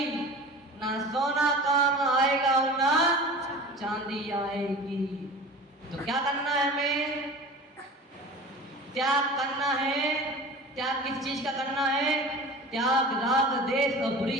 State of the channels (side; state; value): both; normal; correlation 0.37